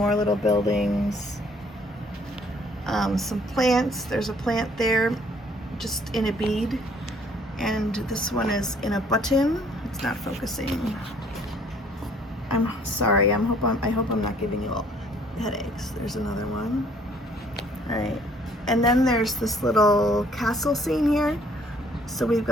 little buildings. Some plants. There's a plant there just in a bead, and this one is in a button. It's not focusing. I'm sorry. I hope I'm not giving you all headaches. There's another one. All right, and then there's this little castle scene here. So we've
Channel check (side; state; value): both; normal; correlation 0.60